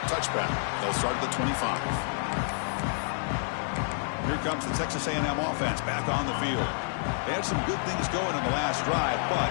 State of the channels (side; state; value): right; silent; digital silence